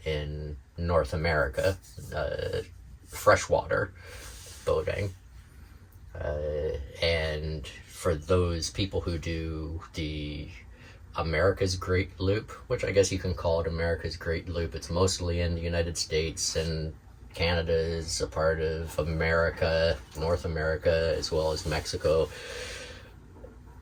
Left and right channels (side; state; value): both; identical; correlation 1.00